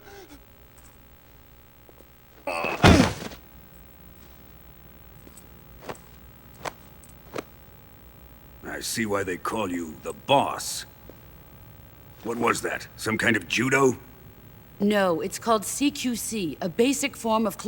I see why they call you the boss. What was that? Some kind of judo? No, it's called CQC, a basic form of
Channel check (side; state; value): both; identical; correlation 1.00